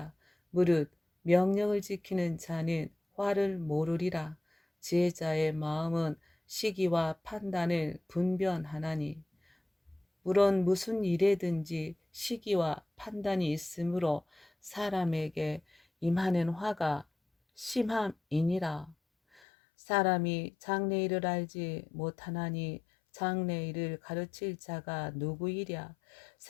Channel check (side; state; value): right; drops out; at 19.4 s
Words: 무릇 명령을 지키는 자는 화를 모르리라. 지혜자의 마음은 시기와 판단을 분별하나니 물론 무슨 일에든지 시기와 판단이 있으므로 사람에게 임하는 화가 심함이니라. 사람이 장래일을 알지 못하나니 장래일을 가르칠 자가 누구이랴.